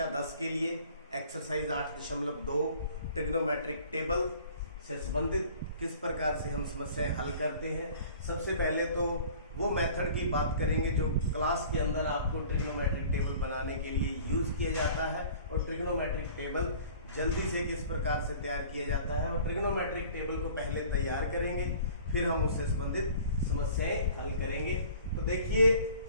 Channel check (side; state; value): both; inverted; correlation -0.48